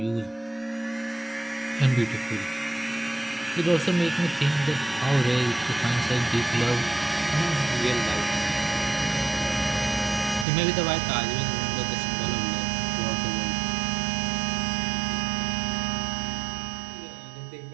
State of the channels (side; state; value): left; drops out; at 10.5 s